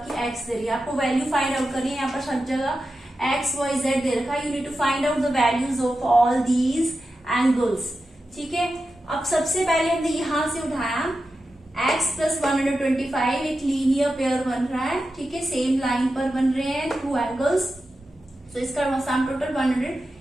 x दे रही है, आपको वैल्यू फाइंड आउट करनी है। यहाँ पर सब जगह x, y, z दे रखा है, you need to find out the values of all these angles, ठीक है। अब सबसे पहले हमने यहां से उठाया x प्लस 125, एक लीनियर पेयर बन रहा है, ठीक है, सेम लाइन पर बन रहे हैं टू एंगल्स, तो इसका सम टोटल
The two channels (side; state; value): both; normal; correlation 0.91